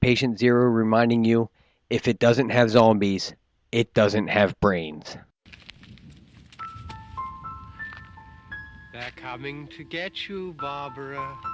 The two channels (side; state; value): both; identical; correlation 1.00